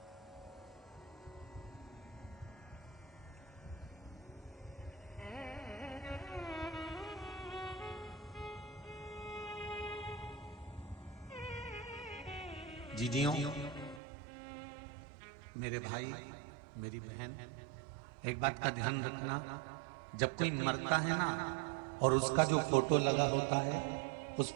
जीजियों, मेरे भाई, मेरी बहन, एक बात का ध्यान रखना, जब कोई मरता है ना और उसका जो फोटो लगा होता है उस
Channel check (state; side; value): drops out; left; at 14.0 s